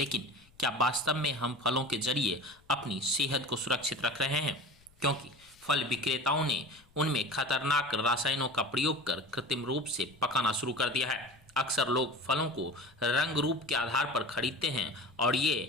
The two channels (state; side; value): noise; left; rumble, 30 dB below the sound